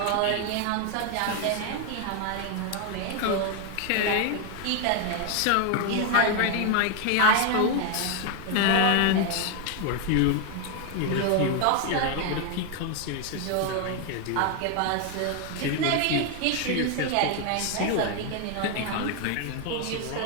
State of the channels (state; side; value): different; both; correlation 0.01